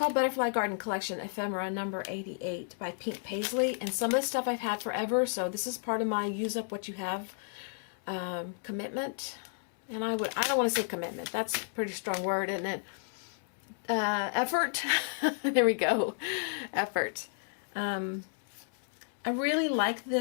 Butterfly Garden Collection Ephemera number 88 by Pink Paisley, and some of the stuff I've had forever, so this is part of my use up what you have commitment. And I don't want to say commitment, that's a pretty strong word, isn't it? Effort. There we go. Effort. I really like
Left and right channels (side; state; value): right; silent; 56 dB below the other